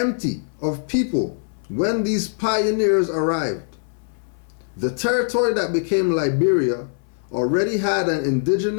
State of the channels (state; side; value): silent; right; 60 dB below the other